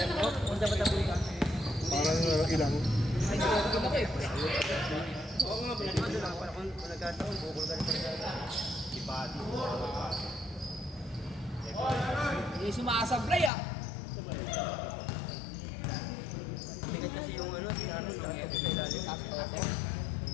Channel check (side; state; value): right; drops out; at 13.5 s